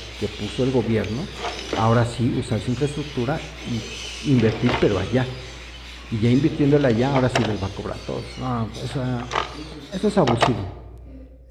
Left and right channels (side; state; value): both; identical; correlation 1.00